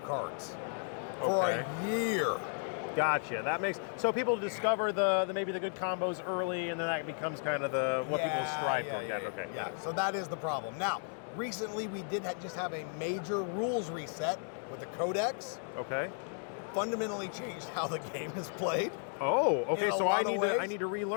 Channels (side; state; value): right; silent; 55 dB below the other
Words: for a year. Gotcha. That makes so people discover the maybe the good combos early, and then that becomes kind of what people strive for. Yeah. So that is the problem. Now, recently we did just have a major rules reset with the Codex. Okay. Fundamentally changed how the game is played. Oh, okay. So I need to